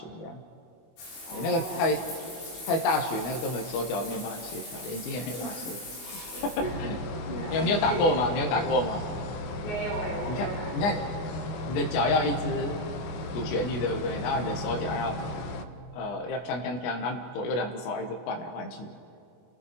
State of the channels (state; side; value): late; right; 24 ms